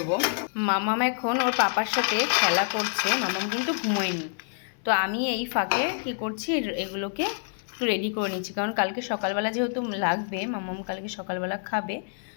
মামাম এখন ওর পাপার সাথে খেলা করছে, মামাম কিন্তু ঘুমোয়নি। তো আমি এই ফাঁকে কি করছি, এগুলোকে একটু রেডি করে নিচ্ছি, কারণ কালকে সকালবেলা যেহেতু লাগবে, মামাম কালকে সকালবেলা খাবে।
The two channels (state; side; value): silent; right; 60 dB below the other